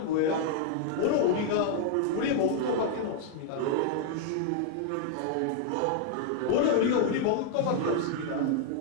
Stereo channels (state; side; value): different; both; correlation -0.01